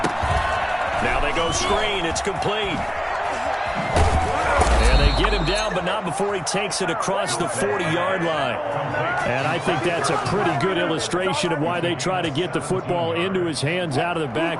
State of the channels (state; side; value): identical; both; correlation 1.00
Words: Now they go screen. It's complete. And they get him down, but not before he takes it across the 40-yard line. And I think that's a pretty good illustration of why they try to get the football into his hands out of the